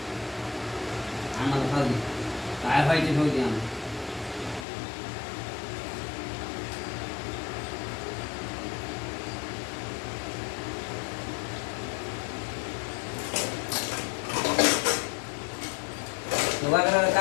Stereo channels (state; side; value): drops out; right; at 4.7 s